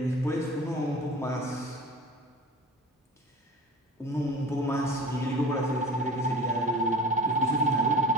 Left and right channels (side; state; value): both; normal; correlation 0.38